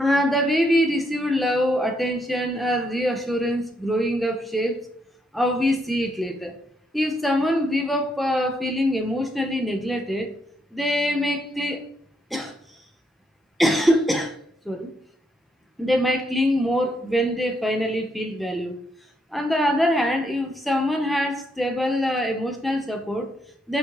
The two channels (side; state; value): both; normal; correlation 0.76